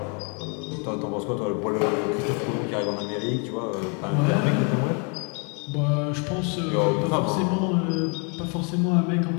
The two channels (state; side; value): quieter; right; 35.6 dB